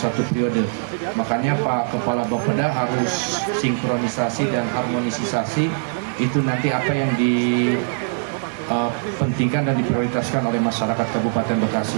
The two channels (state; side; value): silent; left; 58 dB below the other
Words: periode. Makanya Pak Kepala Bapeda harus sinkronisasi dan harmonisasi itu nanti apa yang dipentingkan dan diprioritaskan oleh masyarakat Kabupaten